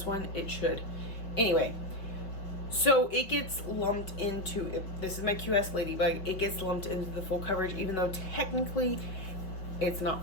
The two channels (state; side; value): late; right; 5.3 ms